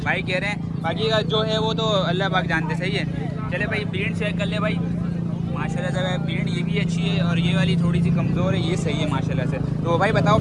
भाई कह रहे हैं। बाकी का जो है वो तो अल्लाह पाक जानते, सही है। चले भाई प्रिंट चेक कर ले भाई माशाल्लाह से भाई। प्रिंट ये भी अच्छी है और ये वाली थोड़ी सी कमज़ोर है, ये सही है माशाल्लाह से। तो भाई बताओ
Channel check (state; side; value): identical; both; correlation 1.00